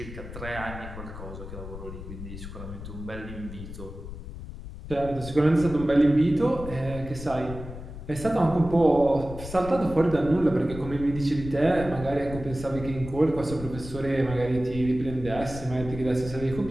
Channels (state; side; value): noise; left; rumble, 11 dB below the sound